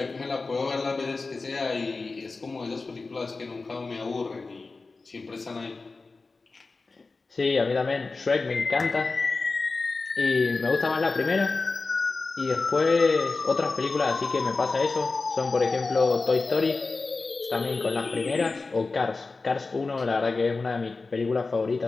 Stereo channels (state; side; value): quieter; right; 3.9 dB